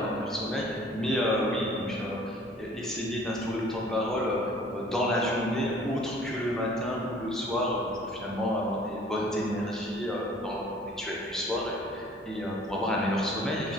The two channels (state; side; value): normal; both; correlation 0.52